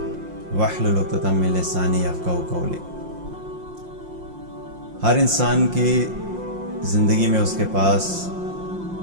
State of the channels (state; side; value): late; left; 5.7 ms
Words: واحلل عقدۃ من لسانی یفقہوا قولی۔ ہر انسان کی زندگی میں اس کے پاس